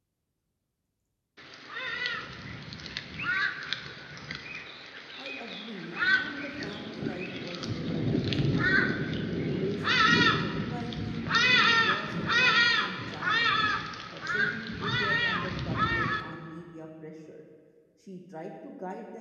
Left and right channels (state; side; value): identical; both; correlation 1.00